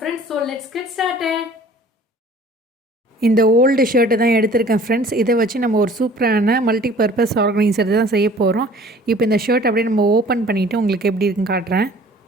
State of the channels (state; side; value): normal; both; correlation 0.50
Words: So let's get started. இந்த ஓல்டு ஷர்ட்டை தான் எடுத்திருக்கேன் ஃப்ரெண்ட்ஸ். இதை வச்சு நம்ம ஒரு சூப்பரான மல்டி பர்பஸ் ஆர்கனைசர் தான் செய்ய போகிறோம். இப்போ இந்த ஷர்ட் அப்படியே நம்ம ஓப்பன் பண்ணிவிட்டு உங்களுக்கு எப்படி இருக்குன்னு காட்டுறேன்.